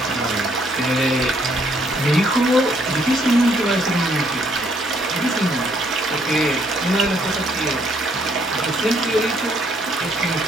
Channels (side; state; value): both; normal; correlation 0.68